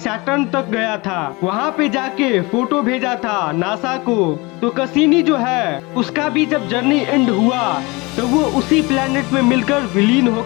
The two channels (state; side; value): quieter; right; 25.0 dB